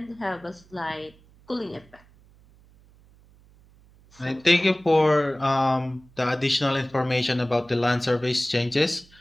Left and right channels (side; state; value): right; noise; hum, 28 dB below the sound